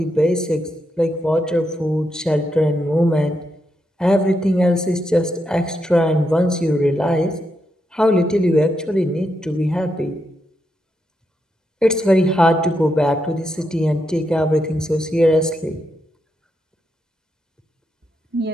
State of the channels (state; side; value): normal; both; correlation 0.83